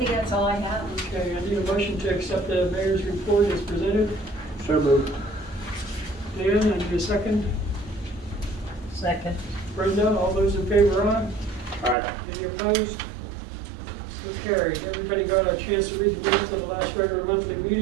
that's all I have. Okay, I need a motion to accept the mayor's report as presented. So moved. Dan, I need a second. Second. Brenda, all those in favor, aye? Aye. Any opposed? So carried. Everybody got a chance to read the minutes of the last regular monthly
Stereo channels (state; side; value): drops out; left; at 12.0 s